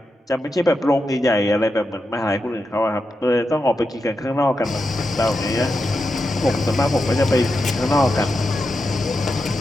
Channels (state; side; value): normal; both; correlation 0.87